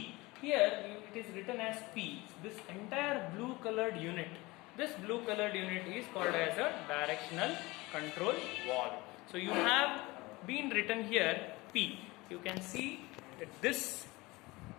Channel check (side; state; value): right; quieter; 22.2 dB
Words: Here it is written as P. This entire blue colored unit, this blue colored unit is called as a directional control valve. So you have been written here P. You can see that this